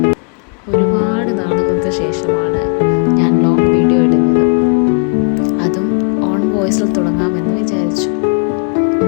ഒരുപാട് നാളുകൾക്ക് ശേഷമാണ് ഞാൻ ലോങ് വീഡിയോ ഇടുന്നത്. അതും ഓൺ വോയിസിൽ തുടങ്ങാമെന്ന് വിചാരിച്ചു.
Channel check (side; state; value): right; quieter; 39.9 dB